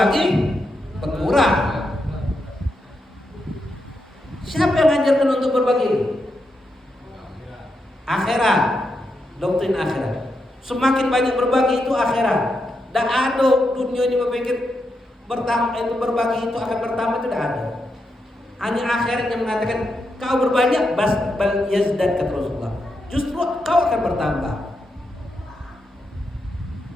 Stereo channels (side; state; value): both; normal; correlation 0.84